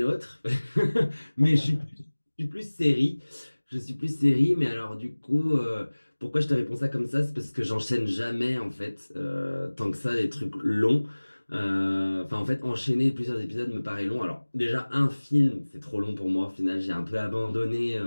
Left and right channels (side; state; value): both; inverted; correlation -1.00